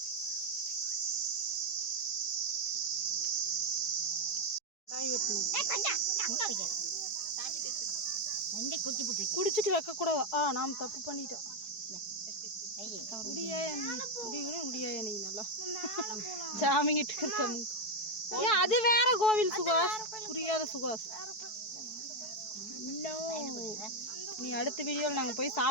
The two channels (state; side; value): late; right; 4.6 ms